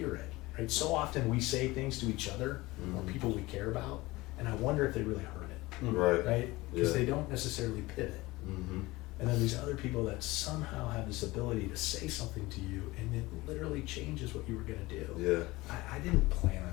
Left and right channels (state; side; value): quieter; right; 20.5 dB